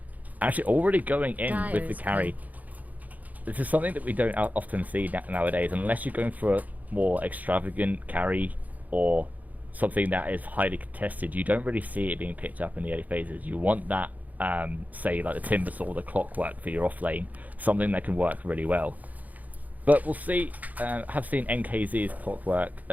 Actually, already going in with the carry. This is something that we don't often see nowadays, unless you're going for a more extravagant carry or something that is highly contested. You don't really see it being picked up in the early phases. You want that, say, like the Timbersaw or the Clockwork for your off lane, something that can work really well. But we'll see. Have seen NKZ's Clockwork,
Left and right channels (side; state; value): left; late; 0.078 ms